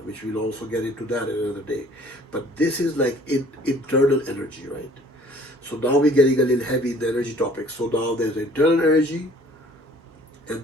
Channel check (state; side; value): normal; both; correlation 0.54